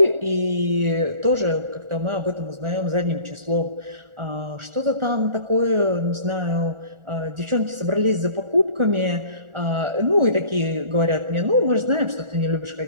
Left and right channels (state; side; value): late; left; 1.4 ms